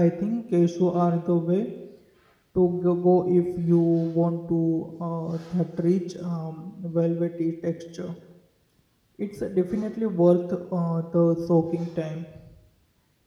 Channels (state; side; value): identical; both; correlation 1.00